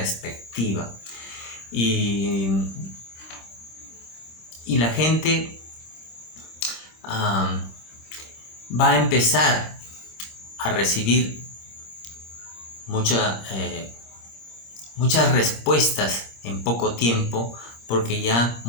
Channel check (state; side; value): late; right; 26 ms